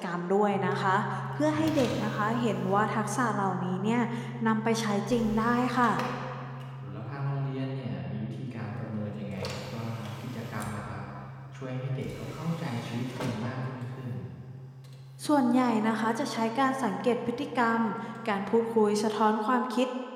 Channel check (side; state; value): both; identical; correlation 1.00